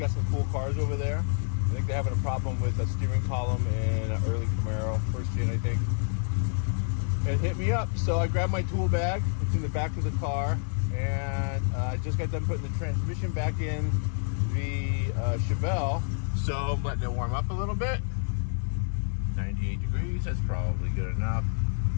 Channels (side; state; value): right; silent; 59 dB below the other